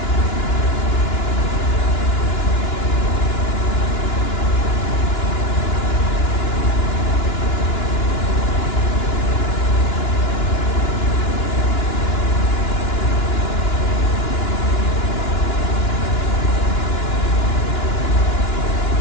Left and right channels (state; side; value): late; right; 2.9 ms